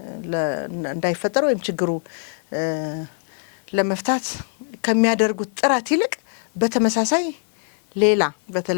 እንዳይፈጠር ወይም ችግሩ ለመፍታት ከሚያደርጉት ጥረት ይልቅ በተመሳሳይ ሌላ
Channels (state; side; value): silent; right; digital silence